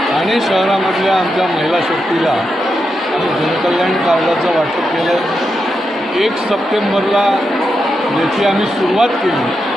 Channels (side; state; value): both; normal; correlation 0.86